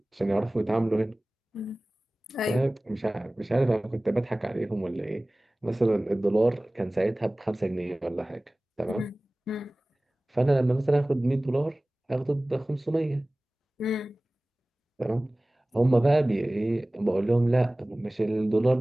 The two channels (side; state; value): both; normal; correlation 0.98